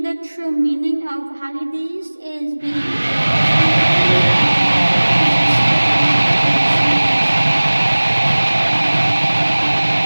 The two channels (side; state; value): both; inverted; correlation -1.00